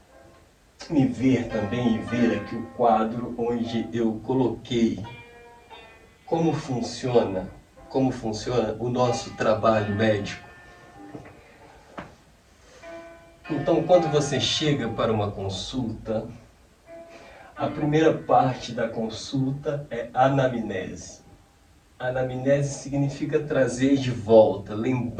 ver também e ver aqui o quadro onde eu coloquei como funciona o nosso trabalho médico. Então, quando você chega para uma consulta, a primeira parte da consulta é anamnese. Anamnese significa trazer de volta,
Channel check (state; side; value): identical; both; correlation 1.00